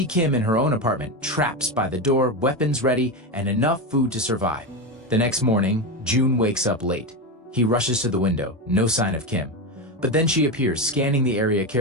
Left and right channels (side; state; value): both; normal; correlation 0.15